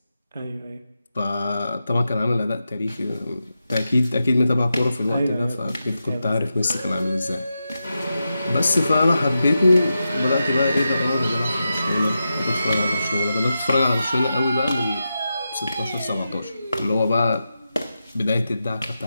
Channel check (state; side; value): inverted; both; correlation -0.89